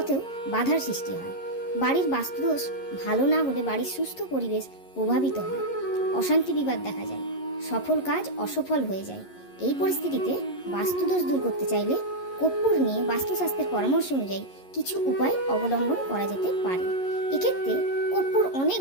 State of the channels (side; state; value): right; late; 11 ms